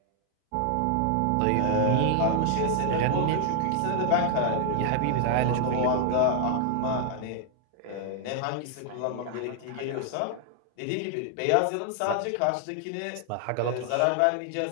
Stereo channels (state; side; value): different; both; correlation 0.00